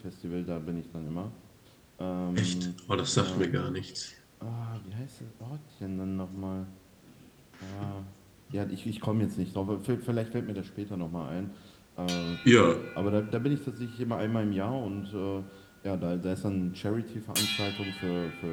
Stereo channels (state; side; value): identical; both; correlation 1.00